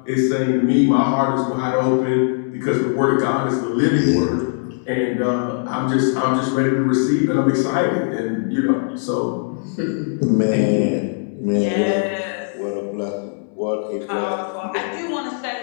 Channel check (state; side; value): silent; right; digital silence